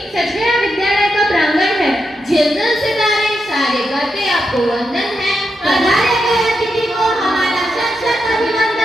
सच गया विद्यालय का प्रांगण है। झिलमिल सितारे सारे करते आपको वंदन है। पधारे गए अतिथि को हमारा सत सत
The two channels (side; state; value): both; normal; correlation 0.85